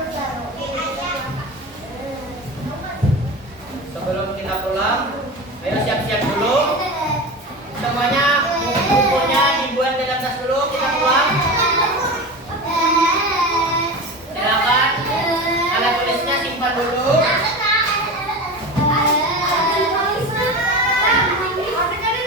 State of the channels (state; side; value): normal; both; correlation 0.27